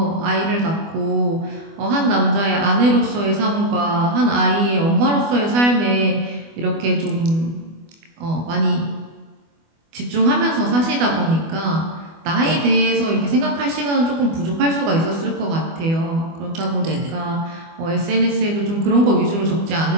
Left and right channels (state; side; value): late; left; 24 ms